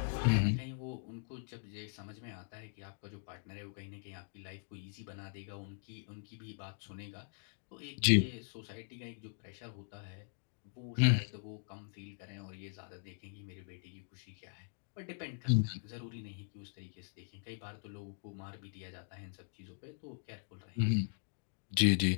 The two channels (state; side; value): silent; right; digital silence